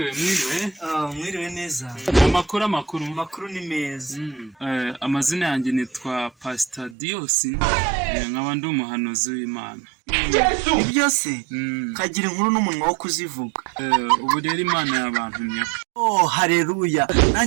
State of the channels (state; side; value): drops out; left; at 7.0 s